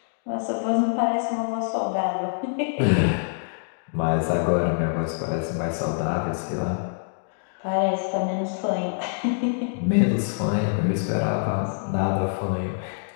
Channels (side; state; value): right; silent; digital silence